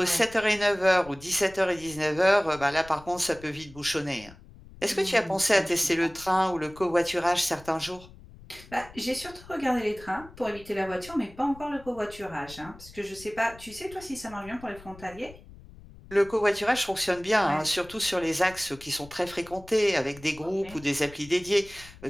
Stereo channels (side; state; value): left; noise; rumble, 20 dB below the sound